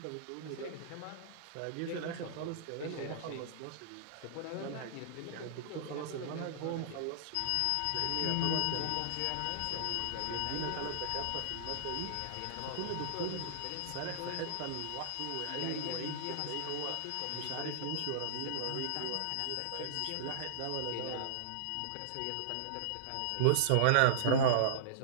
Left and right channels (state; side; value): different; both; correlation -0.02